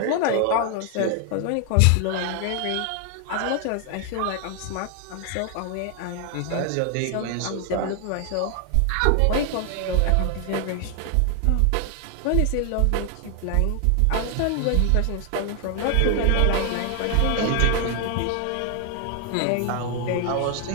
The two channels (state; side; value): different; both; correlation 0.00